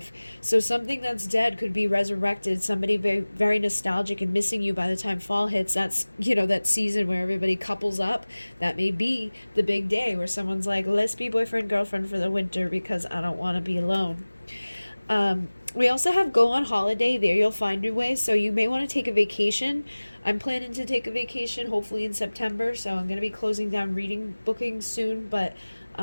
So something that's dead could be resurrected. Somebody very, very nostalgic and missing you by the time fall hits. That's, you know, that season where everybody couples up. That may be the big day where someone's like, let's be boyfriend, girlfriend for the winter because I don't want to be alone. We also have go on holiday. There you'll find your way. So you may want to take a vacation. I'm planning to take a vacation hopefully in September. So I'm going to be closing down reading bookings soon. But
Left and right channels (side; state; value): both; inverted; correlation -1.00